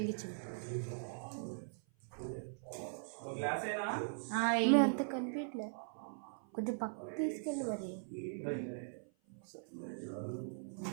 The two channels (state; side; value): silent; left; 51 dB below the other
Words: ఒక గ్లాసేనా? మేము అంత కనిపించలే, కొంచెం పక్కకు తీసుకెళ్ళి మరి.